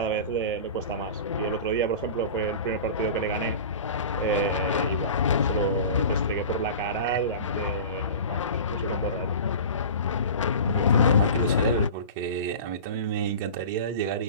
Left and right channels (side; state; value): both; inverted; correlation -0.36